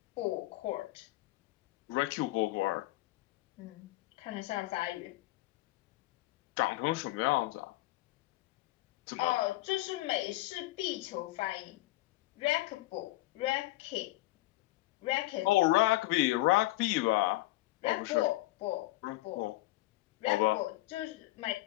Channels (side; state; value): right; quieter; 18.6 dB